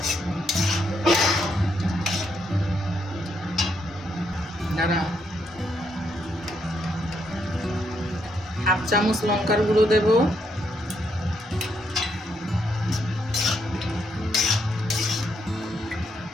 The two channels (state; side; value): normal; both; correlation 0.76